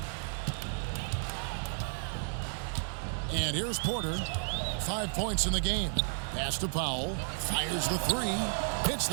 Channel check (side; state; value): left; silent; digital silence